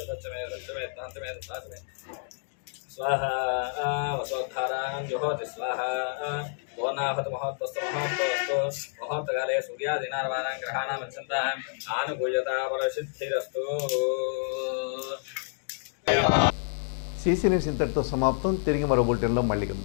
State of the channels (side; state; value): right; silent; digital silence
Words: రసచ్చమే రచ్చమే తాంతమే తాసమే స్వాహా. వసోద్ధారాం జుహోతి స్వాహా. పూర్ణాహుతి మహోత్తస్తు మహోత్తస్తు మహోత్తకాలే సూర్యాదీనార్వాణాం గ్రహాణామచ్చంత ఆనుకూల్యత ఫలసిద్ధిరస్తు. సీసీ న్యూస్ ఇంతటితో సమాప్తం. తిరిగి మరో బులెటిన్లో మళ్ళీ